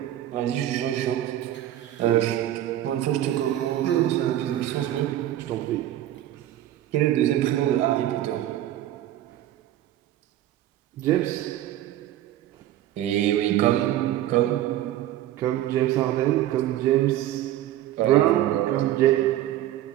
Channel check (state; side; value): quieter; left; 13.1 dB